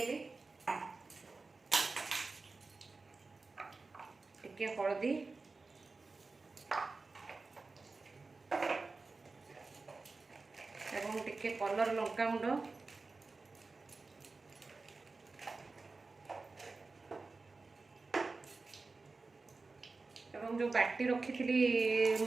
टिके हळदी एवं टिके कलर लंका गुंड एवं जो बाटी रखी थी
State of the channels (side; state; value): left; quieter; 3.8 dB